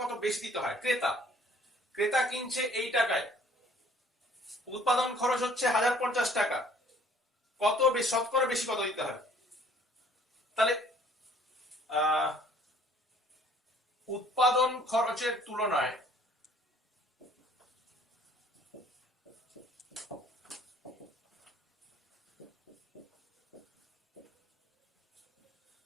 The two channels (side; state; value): both; normal; correlation 0.57